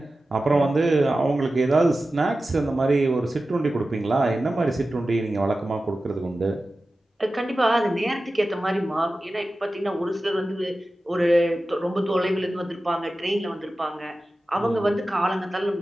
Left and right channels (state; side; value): normal; both; correlation 0.94